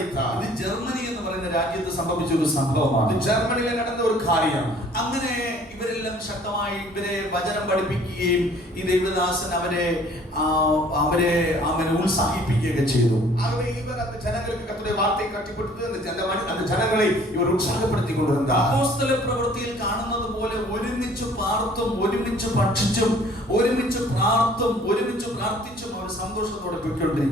ഇത് ജർമ്മനി എന്ന് പറയുന്ന രാജ്യത്ത് സംഭവിച്ച ഒരു സംഭവമാണ്. ജർമ്മനിയിൽ നടന്ന ഒരു കാര്യം. അങ്ങനെ ഇവരെല്ലാം ശക്തമായി ഇവരെ വചനം പഠിപ്പിക്കുകയും ഈ ദൈവദാസൻ അവരെ ഉത്സാഹിപ്പിക്കുകയൊക്കെ ചെയ്തു. ആകെ ഇവർ அந்த ജനങ്ങൾക്ക് കർത്തരുടെ വാർത്തയെ കട്ടിപ്പെടുത്തി அந்த ജനങ്ങളെ ഇവർ ഉത്സാഹപ്പെടുത്തി കൊണ്ടിരുந்தார். അപ്പോസ്തല പ്രവൃത്തിയിൽ കാണുന്നത് പോലെ ഒരുമിച്ച് പാർത്തും ഒരുമിച്ച് ഭക്ഷിച്ചും ഒരുമിച്ച് പ്രാർത്ഥിച്ചും അവർ സന്തോഷത്തോടെ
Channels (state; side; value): normal; both; correlation 0.55